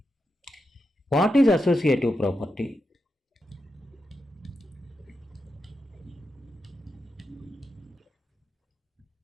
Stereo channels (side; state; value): both; normal; correlation 0.87